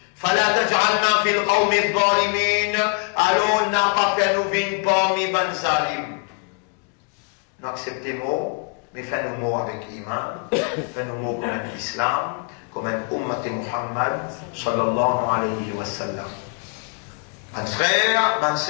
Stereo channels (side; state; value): right; quieter; 37.5 dB